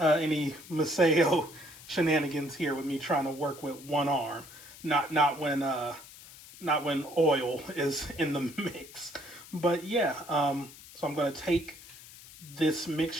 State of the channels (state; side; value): noise; left; hiss, 18 dB below the sound